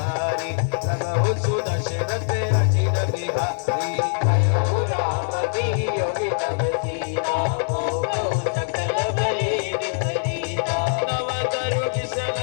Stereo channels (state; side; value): silent; right; digital silence